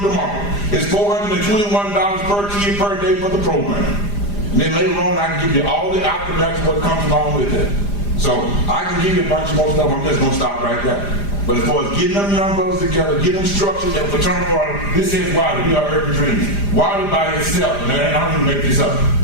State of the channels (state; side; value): late; right; 4.9 ms